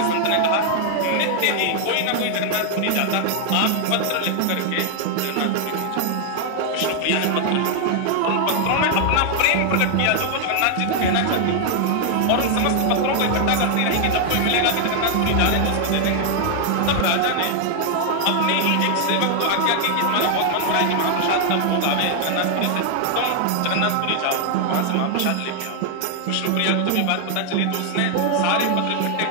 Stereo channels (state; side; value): different; both; correlation 0.00